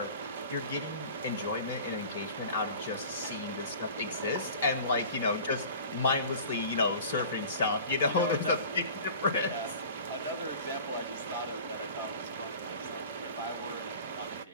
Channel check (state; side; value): inverted; both; correlation -0.42